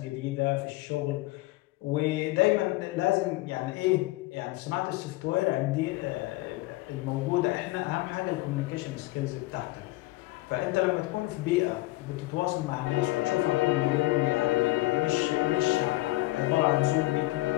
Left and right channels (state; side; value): quieter; right; 19.6 dB